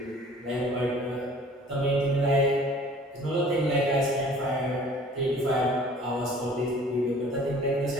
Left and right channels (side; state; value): both; normal; correlation 0.50